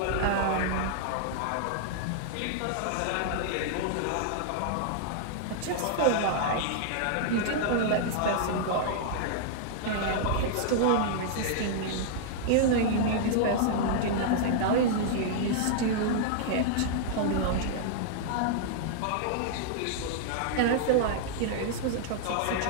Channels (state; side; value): different; both; correlation -0.01